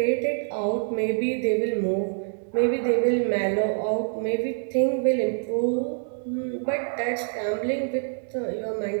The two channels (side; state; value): left; silent; 61 dB below the other